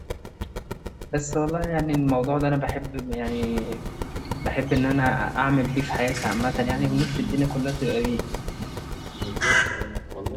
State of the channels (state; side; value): identical; both; correlation 1.00